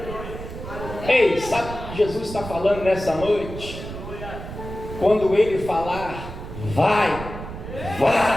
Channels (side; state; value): right; noise; rumble, 10 dB below the sound